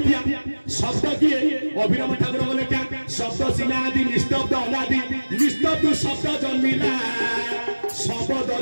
शब्द किए अभिनव ठाकुर बोले क्या शब्द सिनादि निस्तब्ध अनादि निस्तब्ध शब्द जन्मिला सब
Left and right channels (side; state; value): both; inverted; correlation -1.00